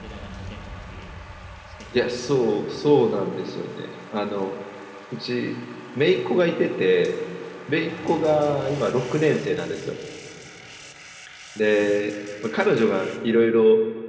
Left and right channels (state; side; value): identical; both; correlation 1.00